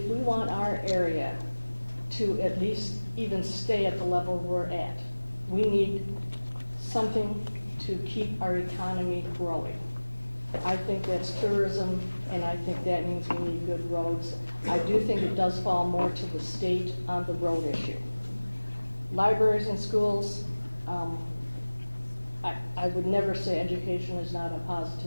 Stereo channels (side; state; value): both; inverted; correlation -1.00